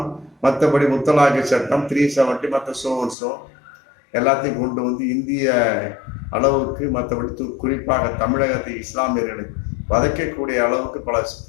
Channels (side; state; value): right; drops out; at 3.2 s